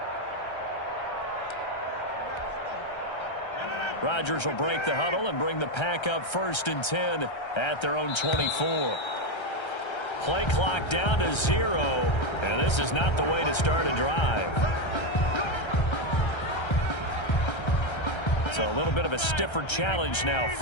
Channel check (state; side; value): late; right; 1.3 ms